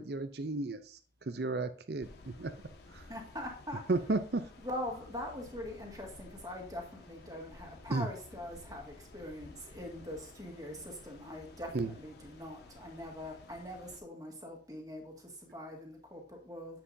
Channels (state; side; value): normal; both; correlation 0.46